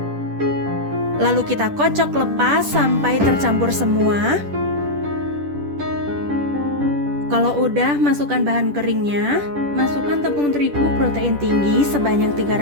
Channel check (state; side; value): late; left; 10 ms